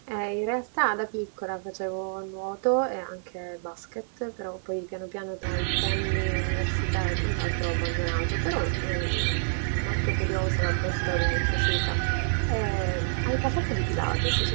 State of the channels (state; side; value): silent; left; 60 dB below the other